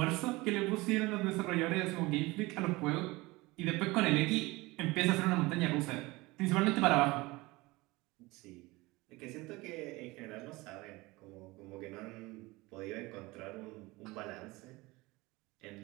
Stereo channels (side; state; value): left; quieter; 21.9 dB